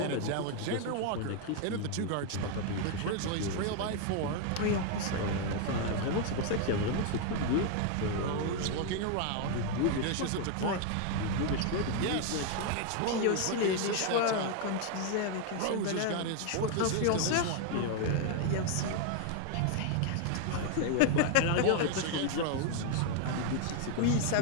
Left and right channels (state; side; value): different; both; correlation 0.00